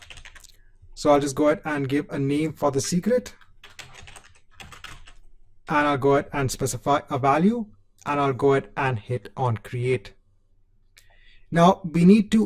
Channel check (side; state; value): both; identical; correlation 1.00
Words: So I'll just go ahead and give a name for the secret. And I'll go ahead and specify a value and I'll go ahead and hit on create. Now we need